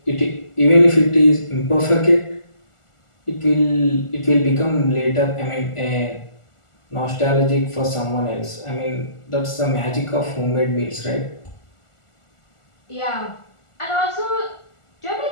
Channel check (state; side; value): late; right; 1.4 ms